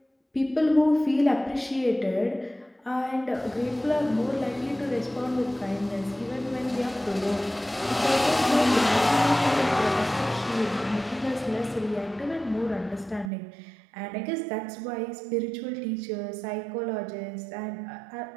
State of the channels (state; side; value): drops out; left; at 13.3 s